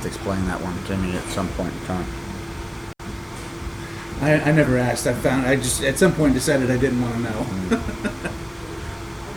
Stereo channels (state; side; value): identical; both; correlation 1.00